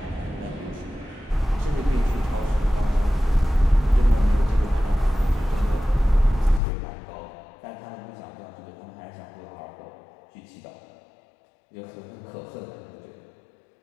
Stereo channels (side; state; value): right; drops out; at 6.6 s